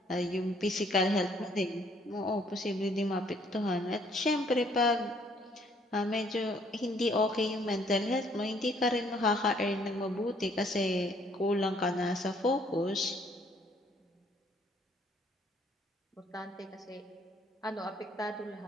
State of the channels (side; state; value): both; normal; correlation 0.64